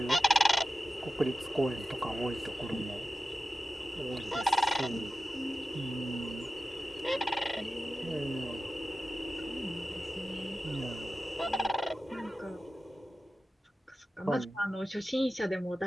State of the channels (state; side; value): normal; both; correlation 0.93